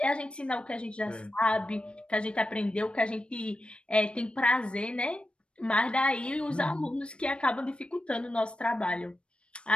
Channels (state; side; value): late; right; 0.057 ms